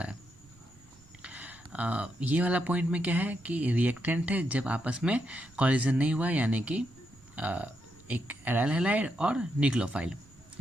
है। ये वाला पॉइंट में क्या है कि रिएक्टेंट है जब आपस में कॉलिजन नहीं हुआ, यानी कि एक एराइल हैलाइड और न्यूक्लियोफाइल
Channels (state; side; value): noise; right; rumble, 26 dB below the sound